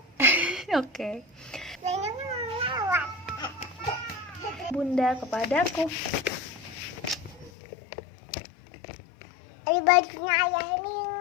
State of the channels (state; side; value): drops out; right; at 7.5 s